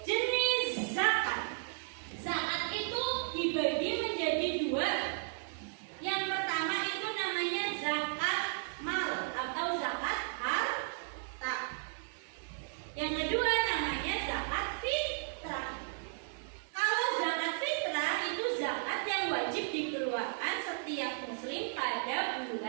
Jenis zakat. Zakat itu dibagi menjadi dua. Yang pertama itu namanya zakat mal atau zakat harta. Yang kedua namanya zakat fitrah. Kalau zakat fitrah itu zakat yang wajib dikeluarkan setiap muslim pada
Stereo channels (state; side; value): silent; left; 55 dB below the other